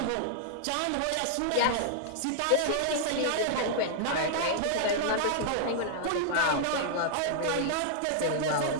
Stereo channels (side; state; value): both; different; correlation -0.01